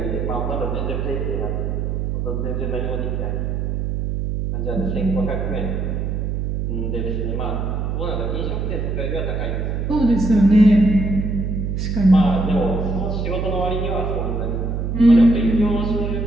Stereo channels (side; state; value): right; noise; hum, 1 dB below the sound